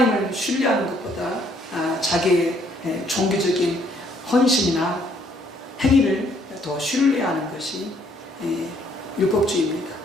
신뢰하는 것보다 자기의 종교적인 헌신이나 행위를 더 신뢰하는 것이 율법주의입니다.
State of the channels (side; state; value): both; normal; correlation 0.66